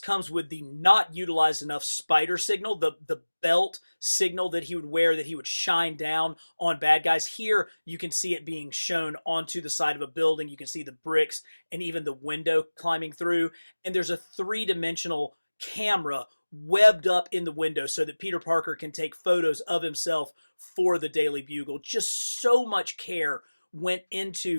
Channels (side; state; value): both; inverted; correlation -1.00